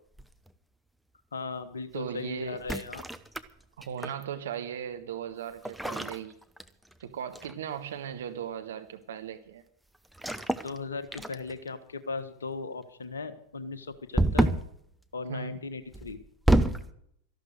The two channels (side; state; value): both; normal; correlation 0.52